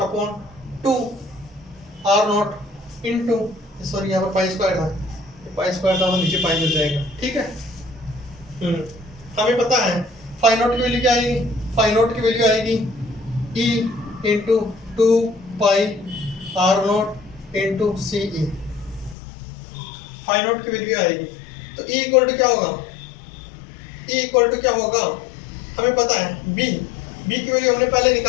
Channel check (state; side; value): drops out; right; at 19.2 s